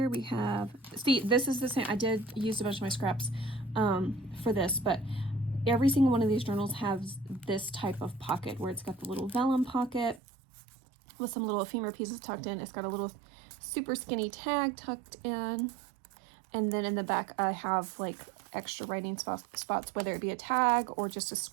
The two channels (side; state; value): left; drops out; at 10.2 s